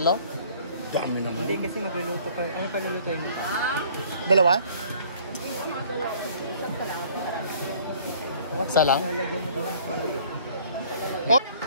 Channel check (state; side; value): inverted; both; correlation -0.55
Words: Dami naman. Hindi kasi magluluto pa. Ano pa lulutuin mo? Dalawa? Isa lang? Lalagyan mo doon ng palay. Oh!